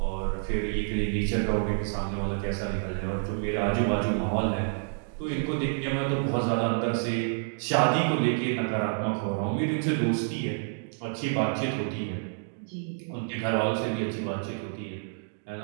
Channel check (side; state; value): left; silent; digital silence